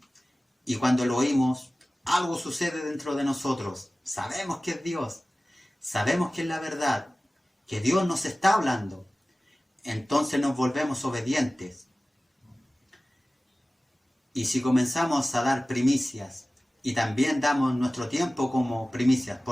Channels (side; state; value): both; normal; correlation 0.97